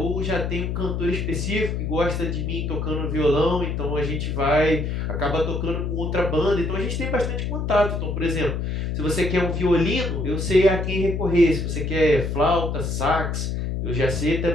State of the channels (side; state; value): left; noise; hum, 2 dB below the sound